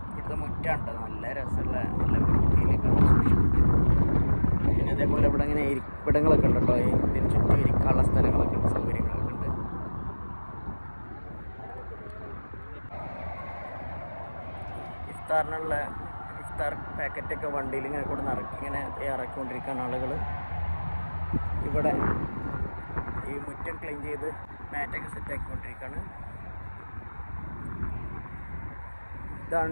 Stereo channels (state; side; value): inverted; both; correlation -1.00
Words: ഇവിടുത്തെ മുറ്റുണ്ട്, നല്ല രസമുള്ള നല്ല വൃത്തിയിലൊക്കെ സൂക്ഷിച്ചിട്ടുണ്ട്. പിന്നെ അതേപോലെ ഇവിടെ ഇങ്ങനെ ഇരിപ്പിടങ്ങളൊക്കെ ഉണ്ട് കേട്ടോ. ഇതിന് ചുറ്റും ഇരിക്കാനുള്ള സ്ഥലങ്ങളൊക്കെ ഉണ്ട്, സൗകര്യങ്ങളൊക്കെ ഉണ്ട്. ഇഫ്താറിനുള്ള ഇഫ്താർ പാക്കറ്റൊക്കെ വണ്ടിയിൽ ഇങ്ങനെ കൂടെ ഇങ്ങനെ ഇറക്കിക്കൊണ്ടിരിക്കുകയാണ് ആളുകൾ. ഇവിടെ ഈ മുറ്റം ക്ലീൻ ചെയ്ത് മാറ്റൊക്കെ സെറ്റാക്കിക്കൊണ്ടിരിക്കുകയാണ്.